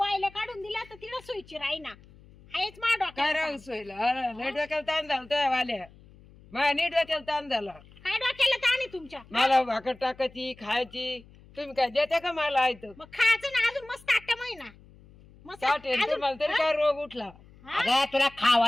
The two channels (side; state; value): left; noise; hum, 24 dB below the sound